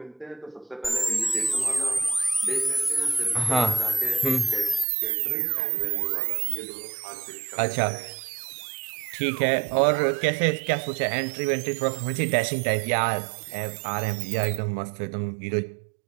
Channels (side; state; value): left; drops out; at 4.9 s